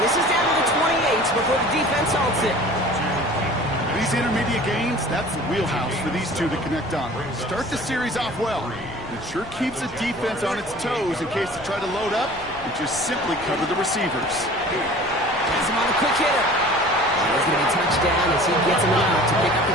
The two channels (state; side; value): noise; left; rumble, 19 dB below the sound